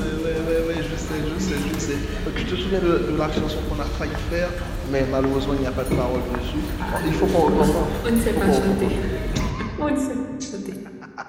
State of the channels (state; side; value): identical; both; correlation 1.00